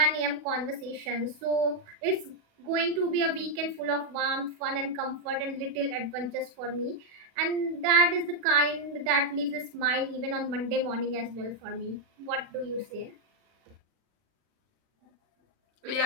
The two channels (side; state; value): left; late; 40 ms